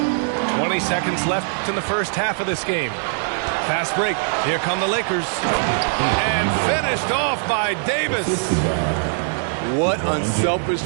20 seconds left in the first half of this game. Fast break. Here come the Lakers. And finished off by Davis. What unselfish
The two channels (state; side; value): silent; left; digital silence